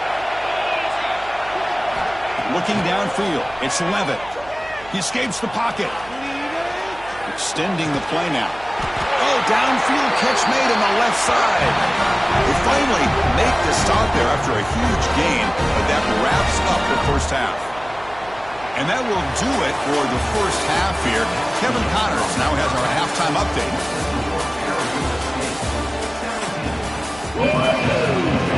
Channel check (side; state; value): right; noise; hum, 20 dB below the sound